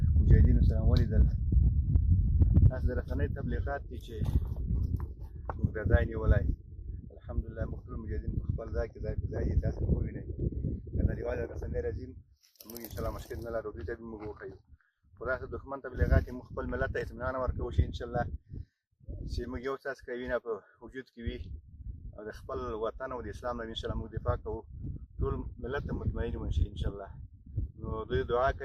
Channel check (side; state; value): both; identical; correlation 1.00